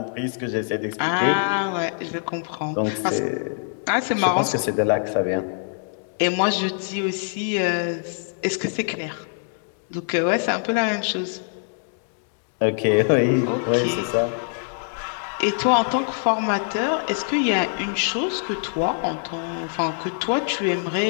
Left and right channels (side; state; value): right; silent; digital silence